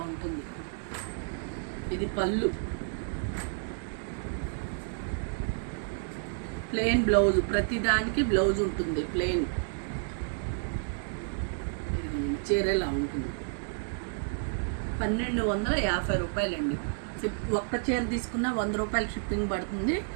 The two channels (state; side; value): silent; left; digital silence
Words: ఉంటుంది. ఇది పళ్ళు, ప్లెయిన్ బ్లౌజ్, ప్రతిదానికి బ్లౌజ్ ఉంటుంది ప్లెయిన్. చీర ఇలా ఉంటుంది. 1250 రూపాయలండి. ఒక్క చీర తీసుకున్న 100 రూపాయలు షిప్పింగ్ పడుతుంది.